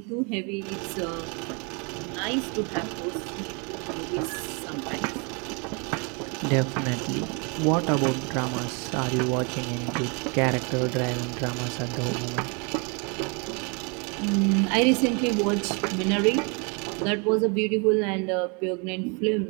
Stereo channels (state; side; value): quieter; left; 33.7 dB